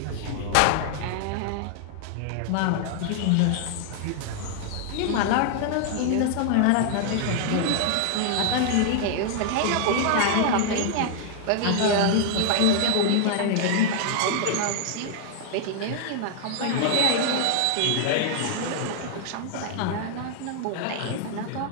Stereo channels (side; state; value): both; different; correlation 0.00